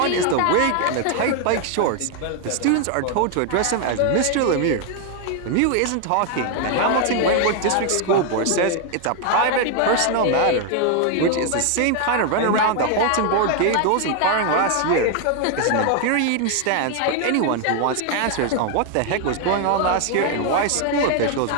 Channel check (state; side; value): different; both; correlation 0.00